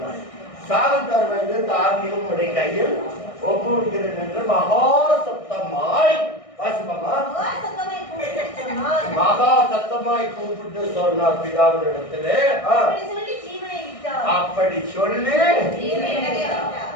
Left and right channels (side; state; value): right; late; 1.6 ms